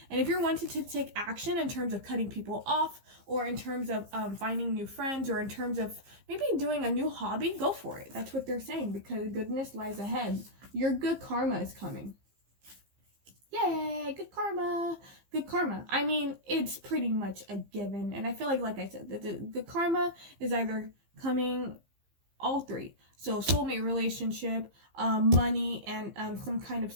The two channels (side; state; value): left; late; 15 ms